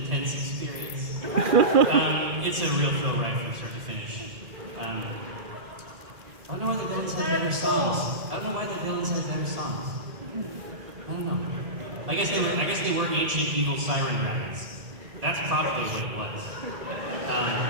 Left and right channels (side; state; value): left; late; 1.7 ms